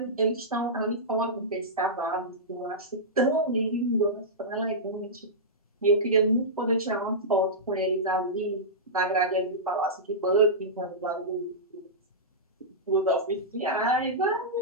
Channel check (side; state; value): both; normal; correlation -0.13